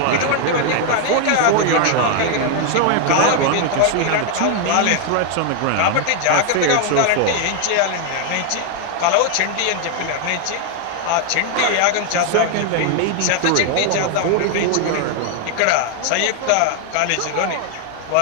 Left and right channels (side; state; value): both; different; correlation 0.00